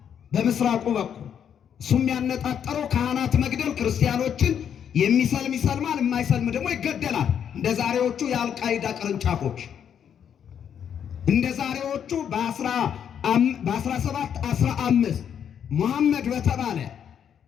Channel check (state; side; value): quieter; right; 8.5 dB